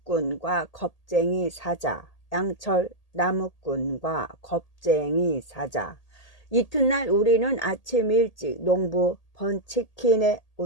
겁쟁이 사자. 양철 나무꾼과 겁쟁이 사자. 이튿날 우리는 아침 일찍 농부 번치킨의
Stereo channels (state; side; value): late; right; 1.8 ms